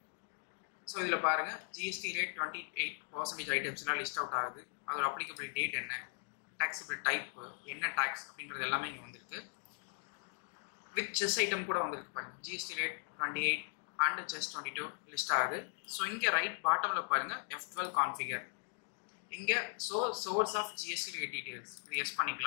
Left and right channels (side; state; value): right; silent; 52 dB below the other